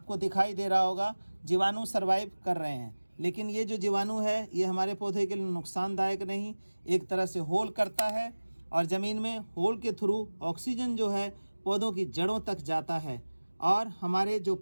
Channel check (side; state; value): both; inverted; correlation -1.00